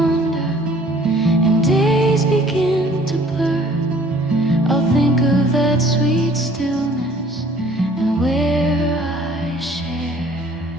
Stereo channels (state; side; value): normal; both; correlation 0.54